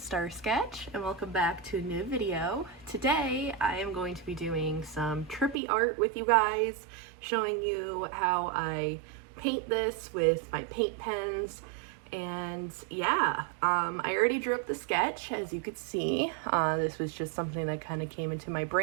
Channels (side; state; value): left; drops out; at 5.6 s